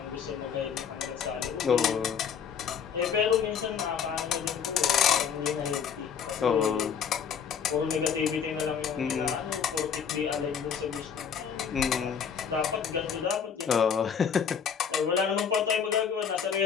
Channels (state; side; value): quieter; right; 7.3 dB